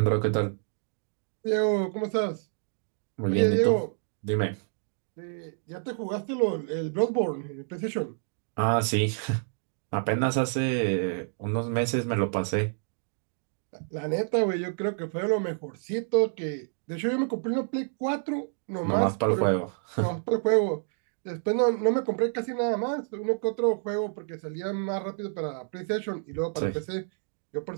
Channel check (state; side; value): silent; left; digital silence